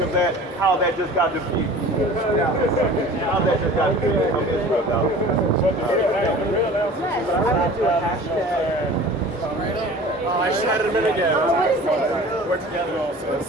of that, how that just got defeated. How that just got defeated from Israel, dog. I shot him in again. What is it? We're together also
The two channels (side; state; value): both; normal; correlation 0.42